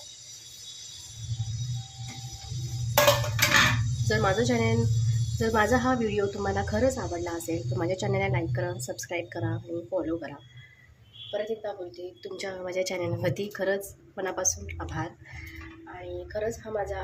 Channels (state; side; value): identical; both; correlation 1.00